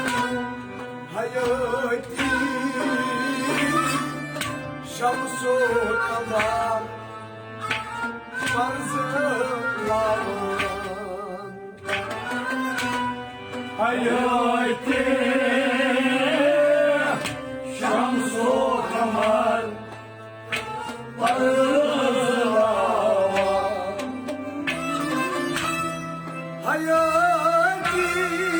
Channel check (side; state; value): both; identical; correlation 1.00